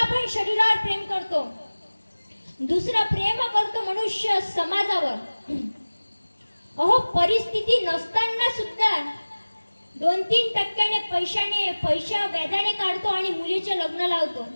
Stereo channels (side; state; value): both; inverted; correlation -1.00